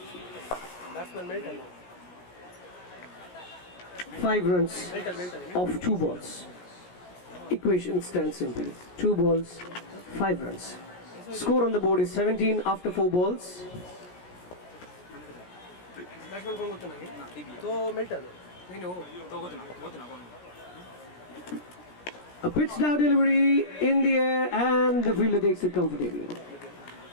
Batsman Milton now. 5 runs Milton. of 2 balls. Equation stands simple. 2 balls, 5 runs. Score on the board is 17 after 4 balls. Batsman कौन होता है? तो Milton. नहीं हो. A pitch down delivery in the air, and the fielder takes it comfortably.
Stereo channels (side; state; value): right; late; 17 ms